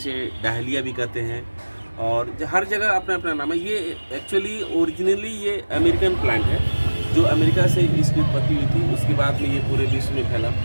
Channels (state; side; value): inverted; both; correlation -1.00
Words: डहलिया भी कहते हैं और हर जगह अपना अपना नाम है। ये एक्चुअली ओरिजिनली ये अमेरिकन प्लांट है जो अमेरिका से इसकी उत्पत्ति हुई थी, उसके बाद में ये पूरे विश्व में फैला।